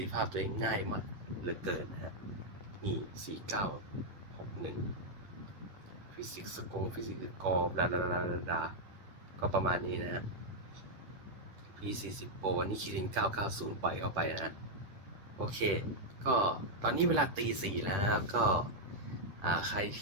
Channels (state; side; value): late; left; 10 ms